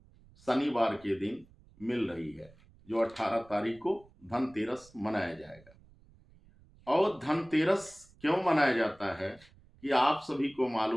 शनिवार के दिन मिल रही है, जो 18 तारीख को धनतेरस मनाया जाएगा। और धनतेरस क्यों मनाया जाता है कि आप सभी को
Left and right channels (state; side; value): noise; right; rumble, 27 dB below the sound